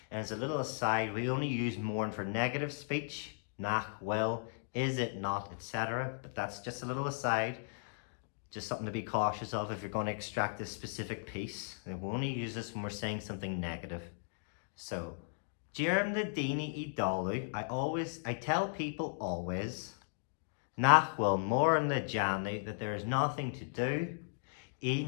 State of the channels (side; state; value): right; silent; digital silence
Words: And as a little aside, we only use mourn for negative speech, nach will, is it not, etc. But that's just a little aside, just something to be cautious of if you're going to extract this specific piece. And we only use this when we're saying something negative. So, Jerem le Dini I dalu, I tell people always, nach wil mourn le Janu, that there is nothing to do, I